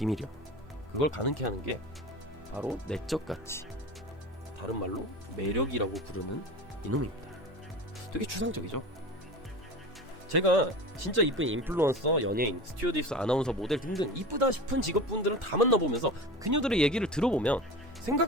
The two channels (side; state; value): both; normal; correlation 0.33